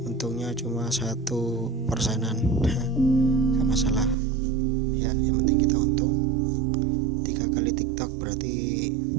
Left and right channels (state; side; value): drops out; left; at 4.2 s